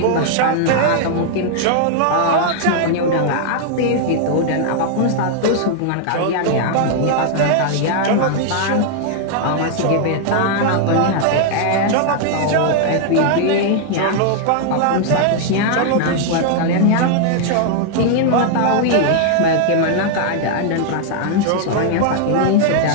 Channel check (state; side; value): different; both; correlation 0.00